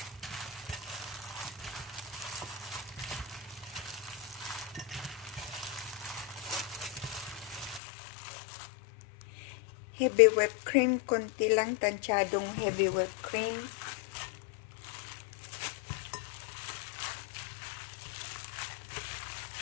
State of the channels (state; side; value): drops out; right; at 7.8 s